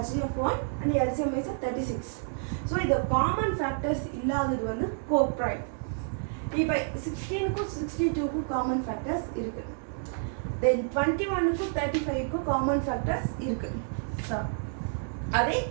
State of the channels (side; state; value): left; silent; 58 dB below the other